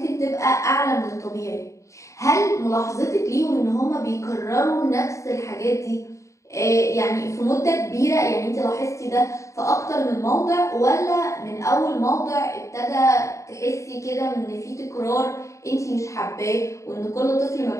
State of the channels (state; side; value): late; right; 0.15 ms